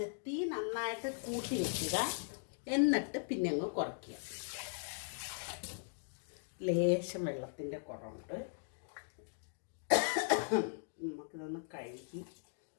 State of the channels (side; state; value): right; silent; digital silence